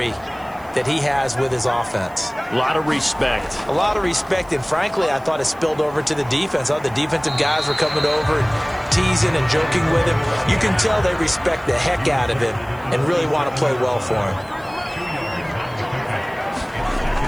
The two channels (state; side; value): noise; right; hiss, 27 dB below the sound